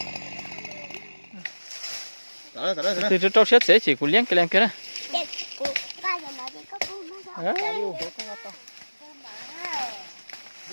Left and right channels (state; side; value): inverted; both; correlation -1.00